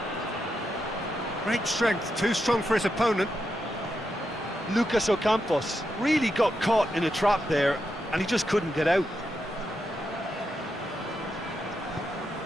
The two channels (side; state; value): both; normal; correlation 0.85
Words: Great strength, too strong for his opponent. Lucas Ocampos really got caught in a trap there, and he just couldn't get out.